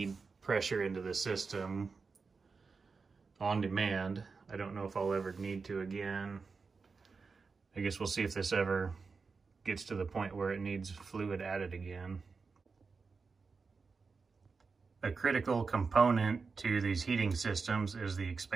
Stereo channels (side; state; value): left; quieter; 4.7 dB